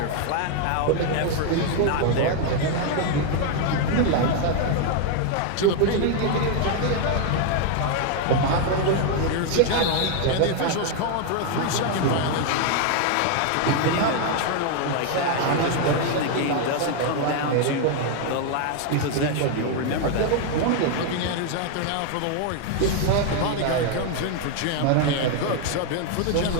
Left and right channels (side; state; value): both; different; correlation 0.00